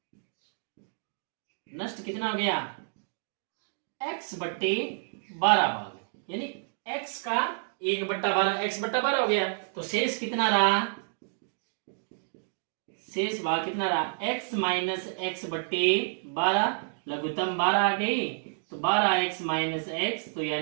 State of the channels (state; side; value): silent; left; digital silence